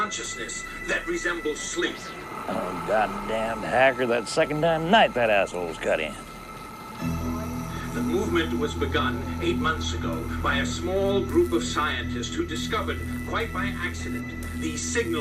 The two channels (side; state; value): both; identical; correlation 1.00